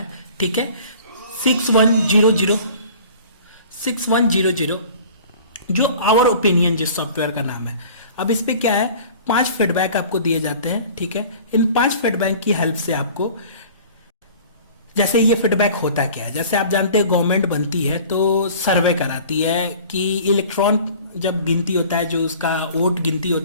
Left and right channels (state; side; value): inverted; both; correlation -0.45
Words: ठीक है। 6100 जो आवर ओपिनियन जिस सॉफ्टवेयर का नाम है। अब इस पे क्या है, 5 फीडबैक आपको दिए जाते हैं, ठीक है। इन 5 फीडबैक की हेल्प से आपको, जैसे ये फीडबैक होता क्या है, जैसे आप जानते हैं गवर्नमेंट बनती है तो सर्वे कराती है कि इलेक्ट्रॉन जब गिनती होता है, जो उसका वोट गिनती